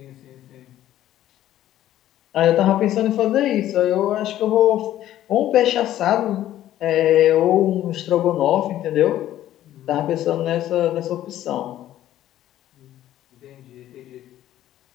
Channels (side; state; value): right; quieter; 12.9 dB